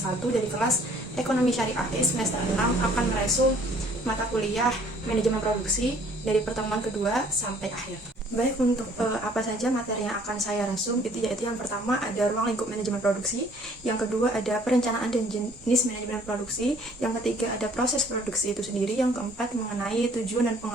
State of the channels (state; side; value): normal; both; correlation 0.58